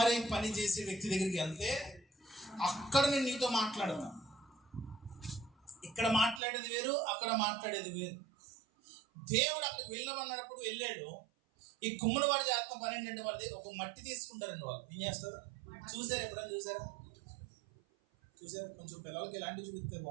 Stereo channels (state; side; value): drops out; left; at 6.4 s